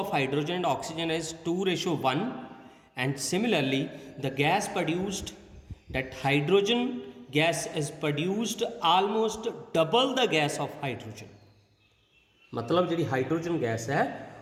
hydrogen and oxygen is 2:1 and similarly the gas produced, that hydrogen gas is produced almost double the gas of hydrogen। मतलब जी hydrogen gas है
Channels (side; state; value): both; identical; correlation 1.00